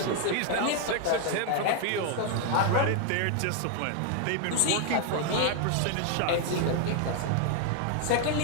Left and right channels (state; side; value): different; both; correlation 0.00